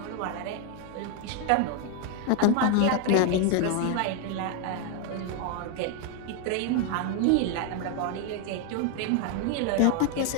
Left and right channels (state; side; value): different; both; correlation 0.01